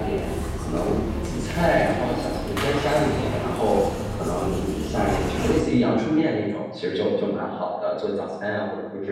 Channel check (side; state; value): both; identical; correlation 1.00